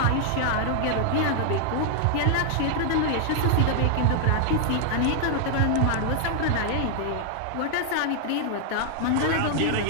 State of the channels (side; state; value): both; different; correlation 0.00